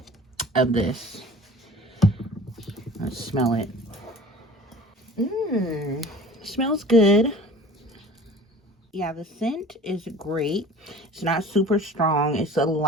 of this. Let's smell it. Smells good. Yeah, the scent is great. It's not super strong. It's a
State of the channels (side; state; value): both; normal; correlation 0.44